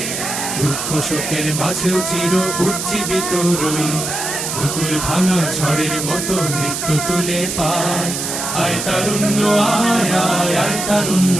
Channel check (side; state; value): right; noise; hiss, 4 dB below the sound